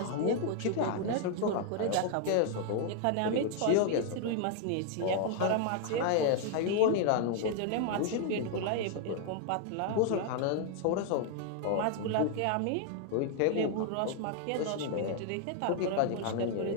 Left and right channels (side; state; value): both; different; correlation 0.00